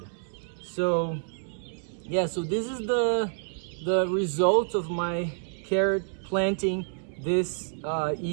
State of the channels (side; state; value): left; silent; digital silence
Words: So yeah, so this is the result of my carrot planting this